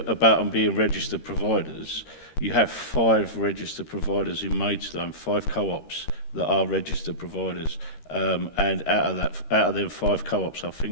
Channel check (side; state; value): right; late; 13 ms